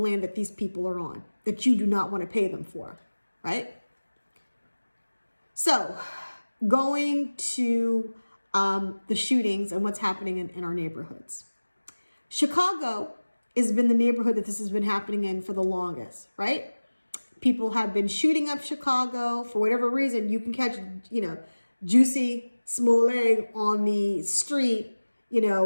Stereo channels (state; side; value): inverted; both; correlation -1.00